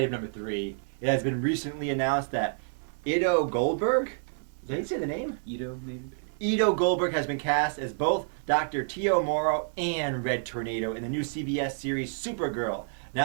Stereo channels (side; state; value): left; silent; digital silence